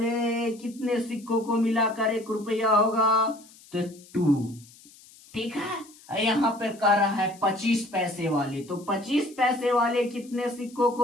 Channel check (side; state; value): left; noise; hiss, 24 dB below the sound